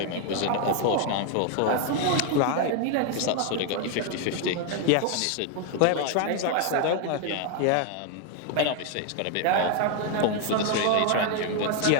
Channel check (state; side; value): different; both; correlation 0.01